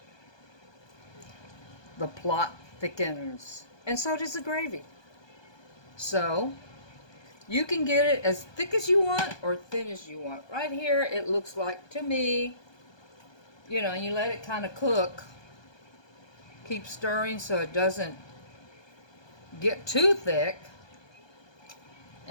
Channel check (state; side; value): late; right; 1.2 ms